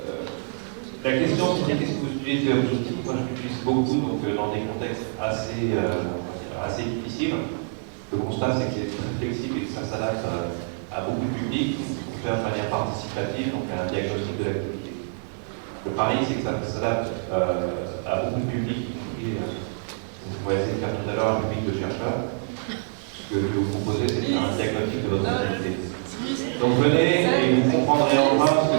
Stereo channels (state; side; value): silent; left; 56 dB below the other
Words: La question, c'est qu'est-ce que vous utilisez comme outil? Moi, je l'utilise beaucoup donc, dans des contextes assez difficiles. Le constat, c'est qu'il est très flexible et que ça s'adapte à beaucoup de publics pour faire de manière participative, donc à un diagnostic de l'activité. Le pari, c'est que ça s'adapte à beaucoup de publics, y compris, vous pourrez essayer de faire tout à l'heure un public de chercheurs. Ce que je vais vous proposer, c'est de faire un diagnostic de votre activité. Donc venez et vous comprendrez enfin ce que